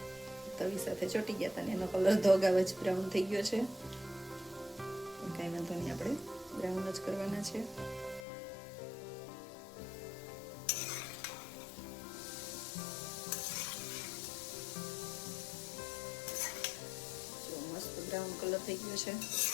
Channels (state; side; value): drops out; right; at 8.2 s